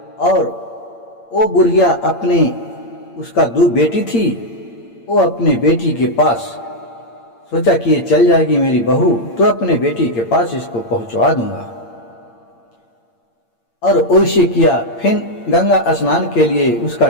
और वो बुढ़िया अपने उसका 2 बेटी थी, वो अपने बेटी के पास सोचा कि ये चल जाएगी मेरी बहू तो अपने बेटी के पास इसको पहुंचवा दूंगा। और वैसे किया। फिर गंगा स्नान के लिए उसका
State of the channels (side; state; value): right; late; 8.7 ms